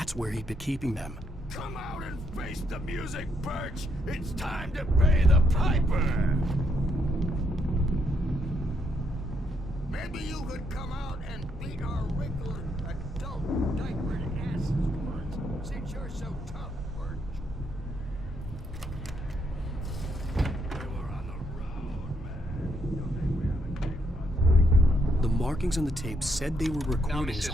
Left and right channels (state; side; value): normal; both; correlation 0.74